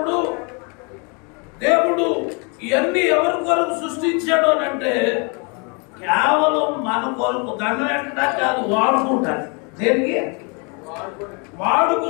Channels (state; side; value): quieter; right; 33.4 dB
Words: దేవుడు ఇవన్నీ ఎవరి కొరకు సృష్టించాడు అని అంటే కేవలం మన కొరకు, దండం పెట్టడానికి కాదు, వాడుకుంటాను. దేనికి?